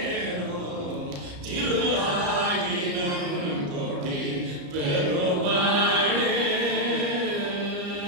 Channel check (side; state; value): left; late; 34 ms